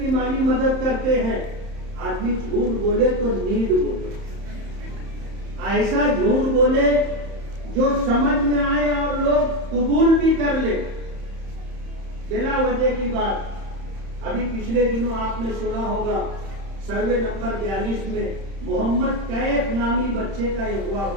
مالی مدد کرتے ہیں. آدمی جھوٹ بولے تو نیند بولے، ایسا جھوٹ بولے جو سمجھ میں آئے اور لوگ قبول بھی کر لے. بلا وجہ کی بات ابھی پچھلے دنوں آپ نے سنا ہوگا سروے نمبر 42 میں محمد کیف نامی بچے کا اغوا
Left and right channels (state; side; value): late; left; 31 ms